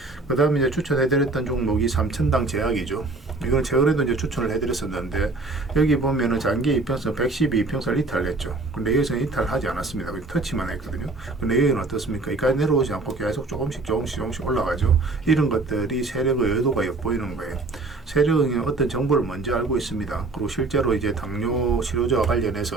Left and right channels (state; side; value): quieter; left; 3.4 dB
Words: 그 다음에 이제 추천해드렸던 종목이 삼천당 제약이죠. 이건 최근에도 이제 추천을 해드렸었는데 여기 보면은 장기 이평선 112평선을 이탈했죠. 근데 여기서는 이탈하지 않았습니다. 터치만 했거든요. 근데 여기는 어떻습니까? 여기까지 내려오지 않고 계속 조금씩 올라가죠. 이런 것들이 세력의 의도가 엿보이는 거예요. 세력은 어떤 정보를 먼저 알고 있습니다. 그리고 실제로 이제 당뇨 치료제와